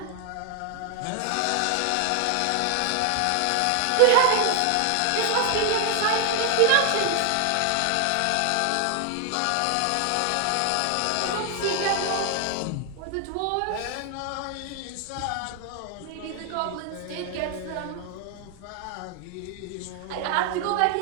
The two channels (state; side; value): different; both; correlation 0.00